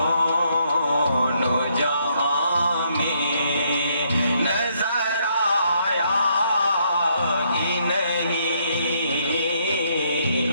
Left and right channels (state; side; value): inverted; both; correlation -0.72